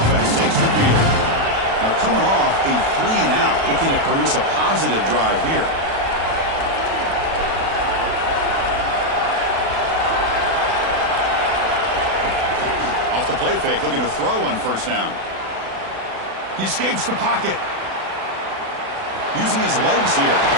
Takes the field. Now coming off a 3-and-out, looking to produce a positive drive here. Off the play fake, looking to throw on 1st down. He escapes the pocket. Using his legs here.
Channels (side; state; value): left; late; 36 ms